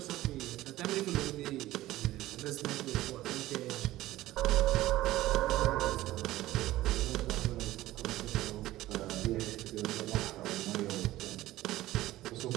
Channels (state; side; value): quieter; left; 16.0 dB